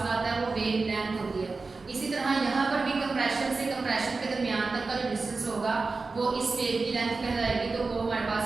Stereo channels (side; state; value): left; quieter; 4.0 dB